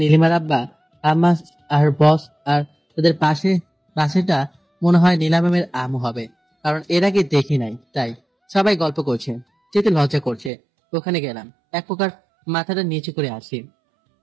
আব্বা, আম্মা আর বস, আর তাদের পাশেটা মনে হয় নীলা ম্যামের আম্মু হবে, কারণ এর আগে দেখি নাই। তাই সবাই গল্প করছে, যেতে লজ্জা করছে। ওখানে গেলাম, এক প্রকার মাথাটা নিচু করে আসি।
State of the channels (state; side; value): drops out; left; at 10.5 s